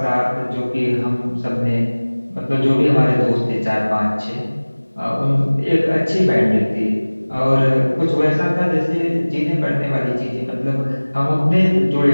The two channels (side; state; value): both; inverted; correlation -1.00